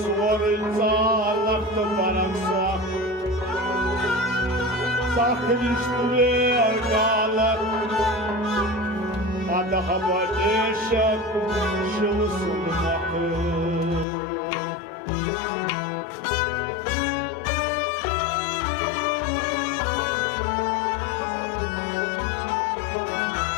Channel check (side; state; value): right; drops out; at 14.1 s